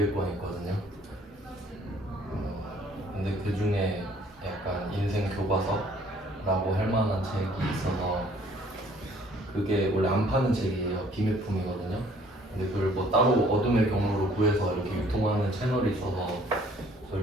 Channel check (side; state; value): both; normal; correlation 0.58